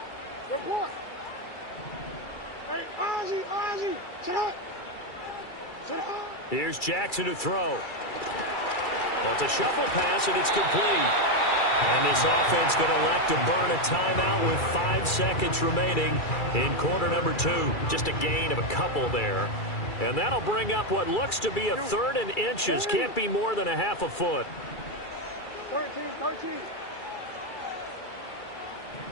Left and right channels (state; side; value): late; right; 2.3 ms